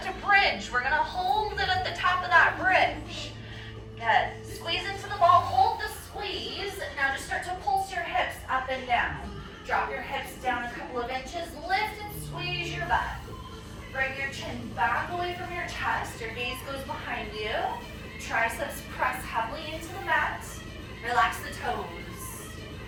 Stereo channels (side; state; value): both; identical; correlation 1.00